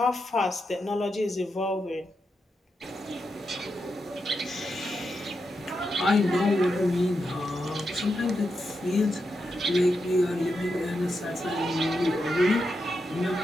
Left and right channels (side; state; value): both; normal; correlation 0.86